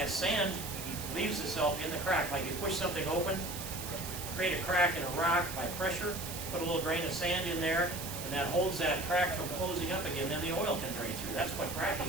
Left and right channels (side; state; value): right; noise; hiss, 8 dB below the sound